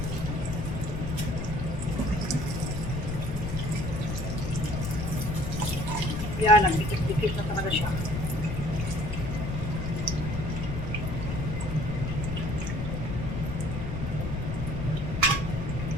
Yan, nagdikit-dikit na talaga siya.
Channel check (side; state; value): left; noise; rumble, 3 dB below the sound